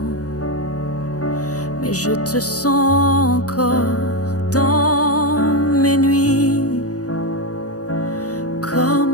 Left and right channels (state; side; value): late; right; 0.67 ms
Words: Mais je te sens encore dans mes nuits,